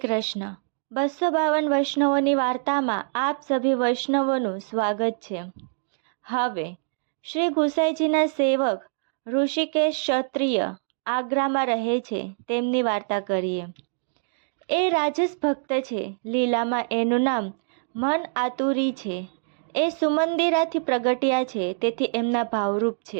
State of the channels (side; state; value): left; silent; digital silence